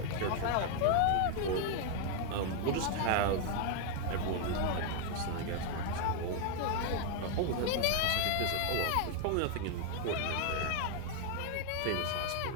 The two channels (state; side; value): different; both; correlation 0.00